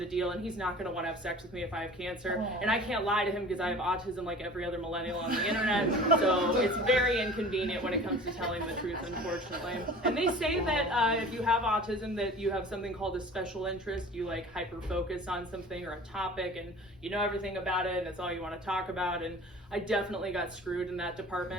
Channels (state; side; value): normal; both; correlation 0.42